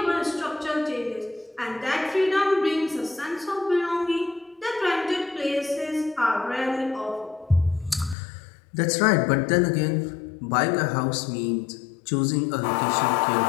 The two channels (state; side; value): drops out; right; at 8.2 s